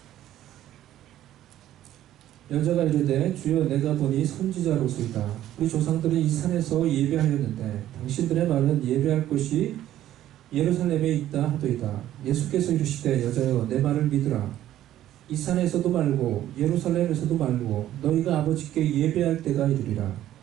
여자가 이르되 주여 내가 보니 선지자로소이다. 우리 조상들은 이 산에서 예배하였는데 당신들의 말은 예배할 곳이 예루살렘에 있다 하도이다. 예수께서 이르시되 여자여 내 말을 믿으라. 이 산에서도 말고 예루살렘에서도 말고 너희가 아버지께 예배할 때가 이르리라.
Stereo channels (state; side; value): quieter; left; 12.8 dB